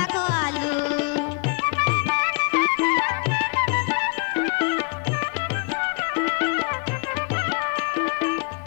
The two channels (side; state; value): right; quieter; 34.7 dB